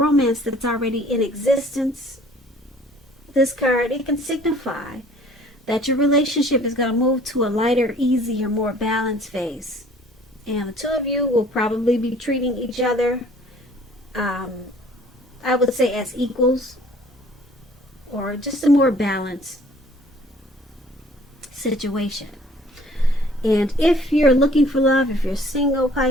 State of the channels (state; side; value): normal; both; correlation 0.54